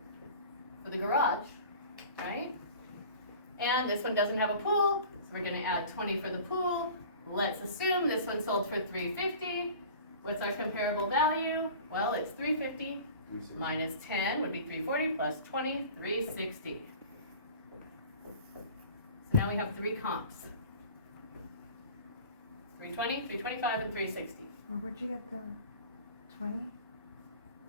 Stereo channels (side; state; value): both; inverted; correlation -0.42